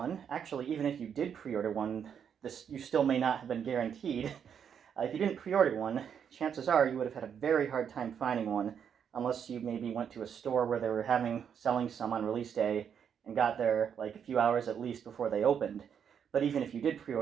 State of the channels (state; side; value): quieter; left; 7.9 dB